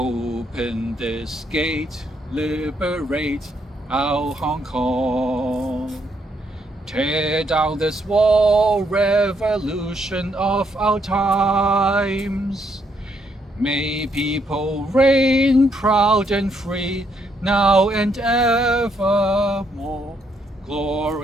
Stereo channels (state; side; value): normal; both; correlation 0.74